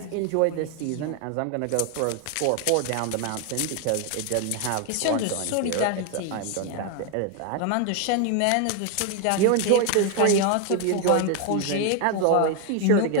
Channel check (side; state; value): both; different; correlation 0.01